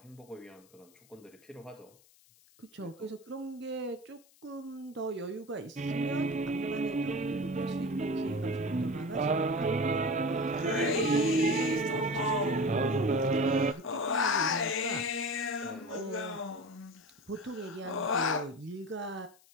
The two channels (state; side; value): noise; left; hiss, 29 dB below the sound